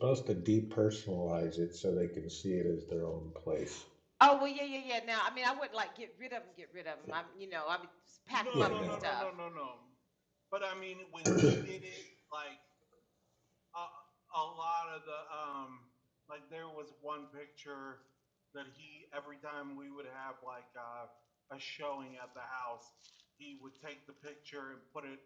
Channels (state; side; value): identical; both; correlation 1.00